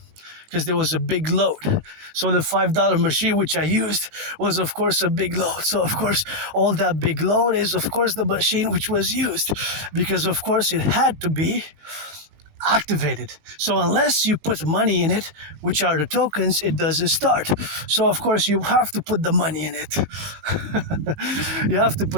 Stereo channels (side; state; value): left; late; 20 ms